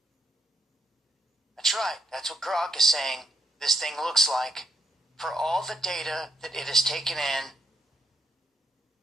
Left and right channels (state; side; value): normal; both; correlation 0.75